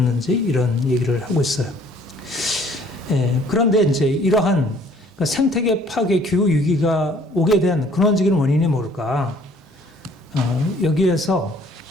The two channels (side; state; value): both; normal; correlation 0.58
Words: 이런 얘기를 하고 있어요. 그런데 이제 이러한 생태계 파괴 기후위기가 오게 된 근원적인 원인이 뭘까? 여기에서